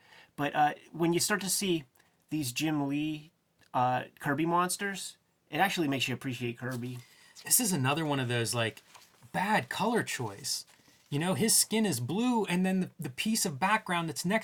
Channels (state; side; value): identical; both; correlation 1.00